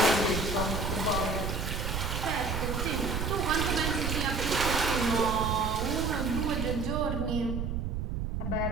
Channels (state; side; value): noise; right; rumble, 2 dB below the sound